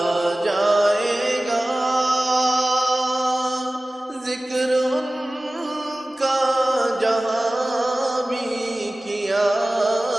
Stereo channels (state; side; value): normal; both; correlation 0.97